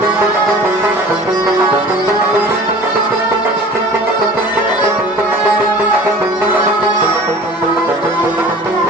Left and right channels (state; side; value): normal; both; correlation 0.43